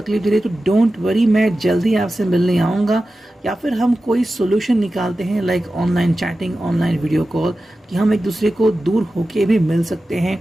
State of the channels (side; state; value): both; normal; correlation 0.94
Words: दे रही है, तो डोंट वरी, मैं जल्दी आपसे मिलने आऊँगा। या फिर हम कोई सोल्यूशन निकालते हैं like online chatting, online video call, कि हम एक दूसरे को दूर होके भी मिल सकते हैं,